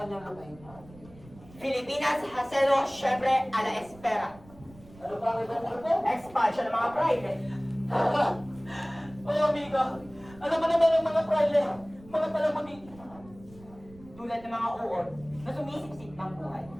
kanyang lupain. Filipinas haselo syempre a la espera. Ano ba ang ibang grupo? Expansion ng mga private. Oh, amigo, ano ba naman ang mga private? Mga palamuti. Tulad ng mga uod na sumisipsip ng buhay.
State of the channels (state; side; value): noise; right; rumble, 22 dB below the sound